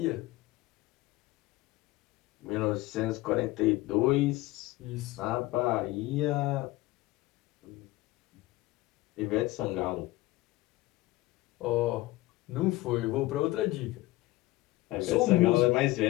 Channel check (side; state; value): right; quieter; 18.6 dB